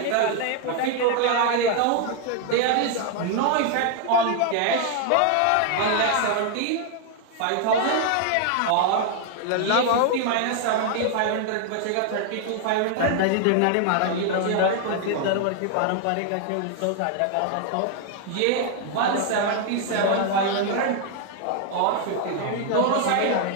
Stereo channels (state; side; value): different; both; correlation 0.00